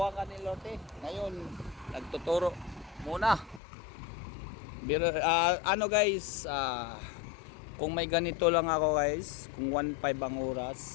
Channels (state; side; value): drops out; right; at 3.6 s